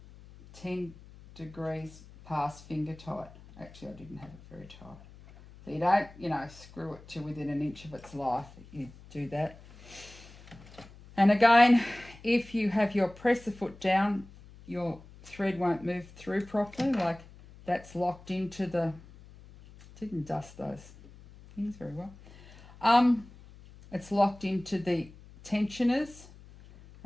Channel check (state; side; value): noise; left; hum, 21 dB below the sound